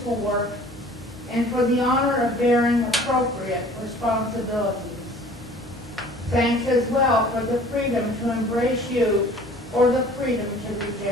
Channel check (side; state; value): right; noise; hum, 21 dB below the sound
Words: work and for the honor of bearing appropriate responsibilities. Thanks as well for the freedom to embrace you or the freedom to